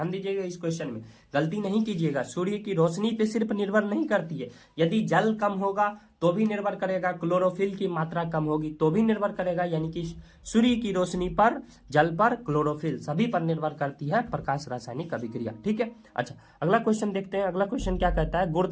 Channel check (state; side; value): identical; both; correlation 1.00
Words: दीजिएगा इस क्वेश्चन में, गलती नहीं कीजिएगा। सूर्य की रोशनी पे सिर्फ निर्भर नहीं करती है। यदि जल कम होगा तो भी निर्भर करेगा, क्लोरोफिल की मात्रा कम होगी तो भी निर्भर करेगा। यानी कि सूर्य की रोशनी पर, जल पर, क्लोरोफिल सभी पर निर्भर करती है प्रकाश रासायनिक अभिक्रिया। ठीक है, अच्छा अगला क्वेश्चन देखते हैं। अगला क्वेश्चन क्या कहता है?